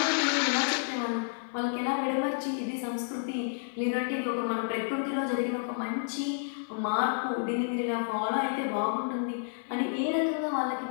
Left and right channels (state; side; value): silent; right; 58 dB below the other